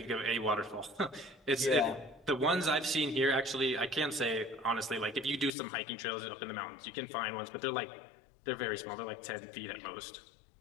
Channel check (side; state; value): right; drops out; at 5.5 s